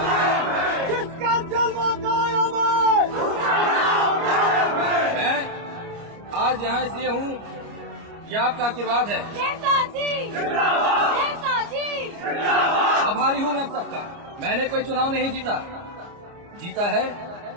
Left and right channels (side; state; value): left; late; 29 ms